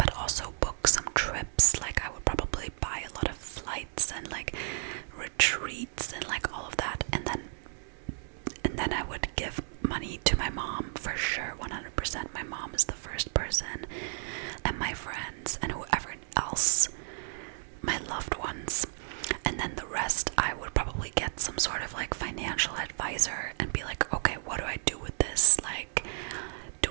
also book some trips. Like, I would probably buy a lot of flights and like retreats and like all of that, and then I would give money to my mom for sure, 100%. My mom is the first person, and my friends and whoever else, my loved ones. And then the rest, I would probably get some sort of like financial advisor and be like, okay, what do I do with this? Like, do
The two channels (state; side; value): silent; left; 56 dB below the other